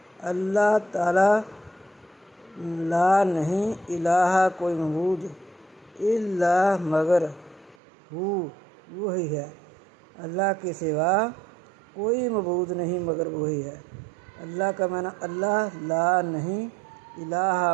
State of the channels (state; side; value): drops out; left; at 7.8 s